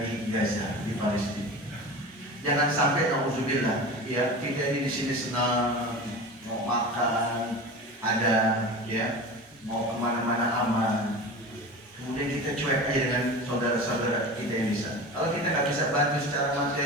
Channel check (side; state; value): both; normal; correlation 0.32